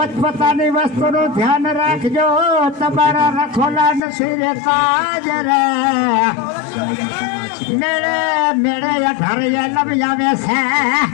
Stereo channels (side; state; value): right; drops out; at 4.0 s